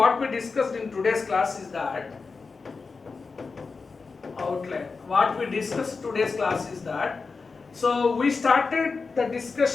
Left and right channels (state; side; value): quieter; right; 4.5 dB